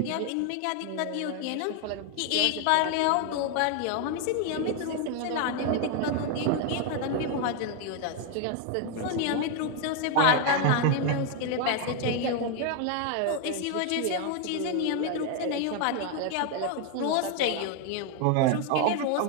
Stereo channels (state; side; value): different; both; correlation 0.01